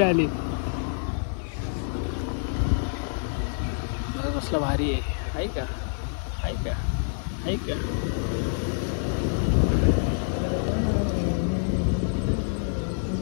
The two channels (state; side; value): silent; right; digital silence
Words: आली. कसलं भारी आहे का, आहे का, आहे का.